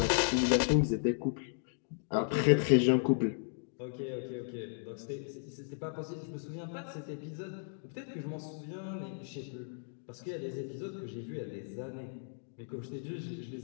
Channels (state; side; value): silent; right; digital silence